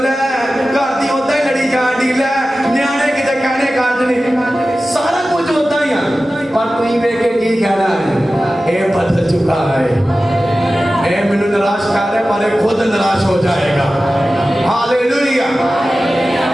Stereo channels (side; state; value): both; normal; correlation 0.95